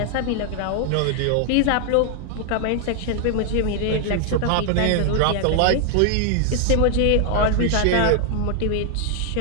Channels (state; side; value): different; both; correlation 0.00